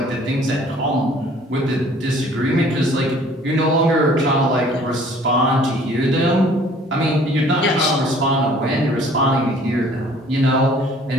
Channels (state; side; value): normal; both; correlation 0.54